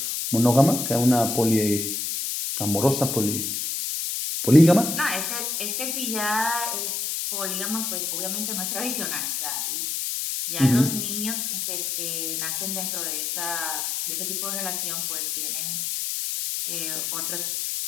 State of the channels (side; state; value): left; noise; hiss, 2 dB below the sound